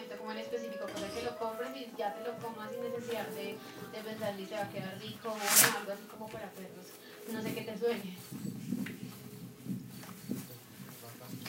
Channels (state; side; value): identical; both; correlation 1.00